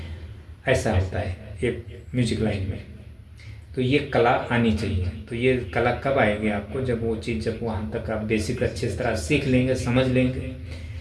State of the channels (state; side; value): identical; both; correlation 1.00